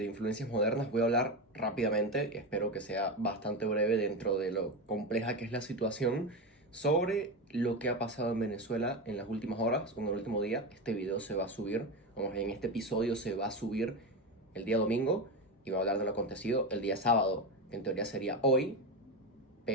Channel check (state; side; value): normal; both; correlation 0.17